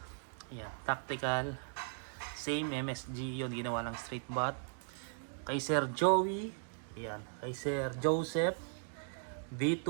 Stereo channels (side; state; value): left; silent; 53 dB below the other